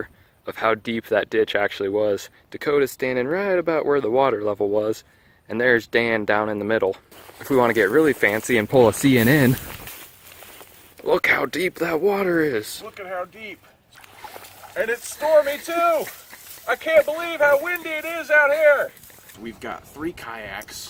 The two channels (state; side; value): identical; both; correlation 1.00